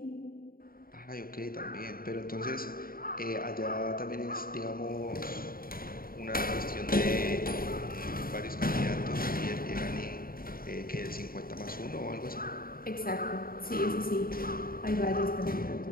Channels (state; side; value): late; right; 0.42 ms